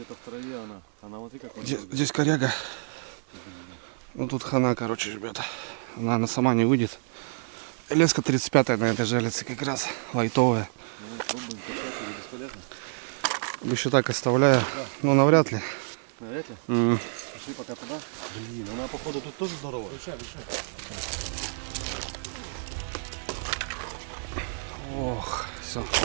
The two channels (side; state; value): left; silent; digital silence